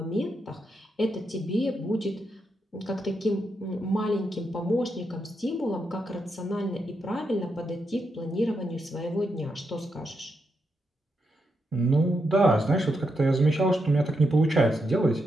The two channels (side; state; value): both; normal; correlation 0.83